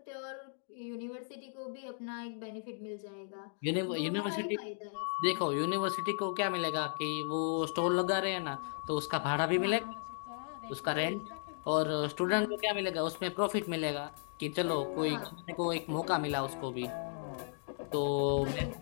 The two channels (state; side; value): silent; right; digital silence